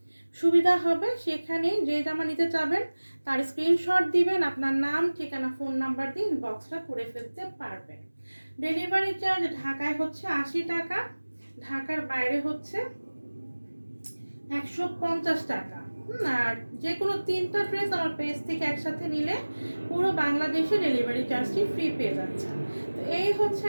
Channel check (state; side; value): inverted; both; correlation -1.00